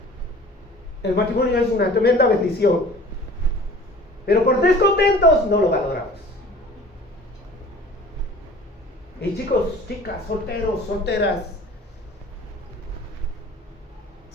El matrimonio es una tremenda bendición, pero por descontentos no lo valoramos. Y chicos, chicas, solteros, solteras,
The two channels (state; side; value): normal; both; correlation 0.46